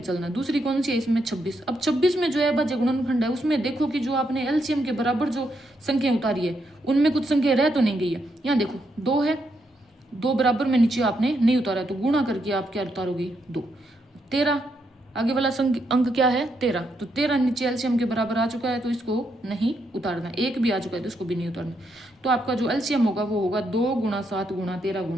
चलना है, दूसरी कौन सी है इसमें 26। अब 26 में जो अभाज्य गुणनखंड है उसमें देखो कि जो आपने LCM के बराबर जो संख्या उतारी है उनमें कुछ संख्या रह तो नहीं गई है। यहाँ देखो 2 है, 2 बराबर में नीचे आपने नहीं उतारा, तो गुणा करके आप क्या उतारोगे 2। 13 आगे वाला अंक क्या है 13, तो 13 नीचे LCM के बराबर आ चुका है तो इसको नहीं उतारना, 1 भी आ चुका है तो इसको भी नहीं उतारना। तो आपका जो LCM होगा वो होगा 2 गुणा 7 गुणा 13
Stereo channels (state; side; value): normal; both; correlation 0.79